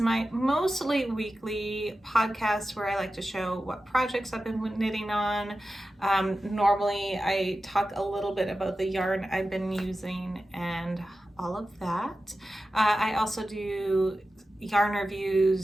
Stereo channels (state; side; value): normal; both; correlation 0.93